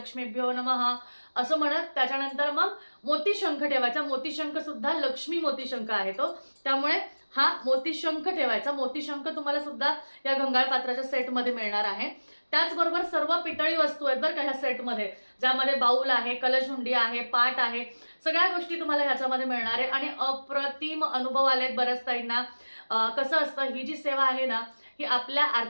नमः असं म्हणत. त्याच्यानंतर मग मोतीशंख ठेवायचा. मोतीशंख सुद्धा लक्ष्मी मोतीशंख आहे तो, त्यामुळे हा मोतीशंख ठेवायचा. मोतीशंख तुम्हाला सुद्धा या गंगाळ पात्राच्या सेटमध्ये मिळणार आहे. त्याचबरोबर सर्व पितळी वस्तू आहेत बरं का ह्या सेटमध्ये, ज्यामध्ये बाऊल आहे, कलशहुंडी आहे, पाट आहे, सगळ्या गोष्टी तुम्हाला ह्याच्यामध्ये मिळणार आहे. आणि अप्रतिम अनुभव आलेत बऱ्याच ताईंना. कसं असतं, ही जी सेवा आहे ना ही आपल्या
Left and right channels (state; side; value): inverted; both; correlation -1.00